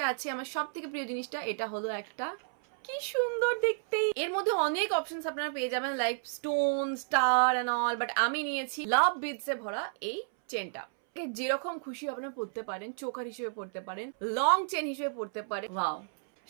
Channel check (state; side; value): silent; left; 57 dB below the other